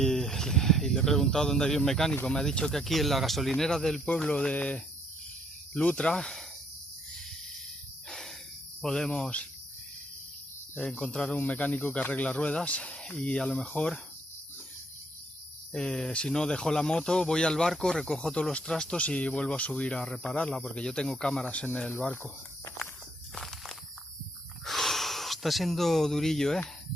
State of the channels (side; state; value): both; normal; correlation 0.69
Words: le he preguntado dónde había un mecánico. Me ha dicho que aquí en la gasolinera del pueblo de Lutra podemos encontrar un mecánico que arregla ruedas y a lo mejor si no dejo la moto, voy al barco, recojo todos los trastos y vuelvo a subir a repararla porque yo tengo cámaras en el barco. Está siendo durillo, ¿eh?